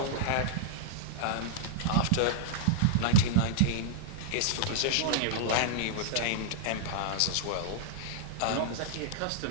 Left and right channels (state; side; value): different; both; correlation -0.01